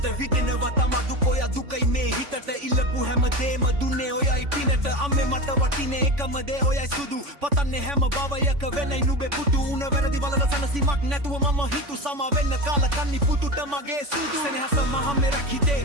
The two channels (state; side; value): late; left; 3.5 ms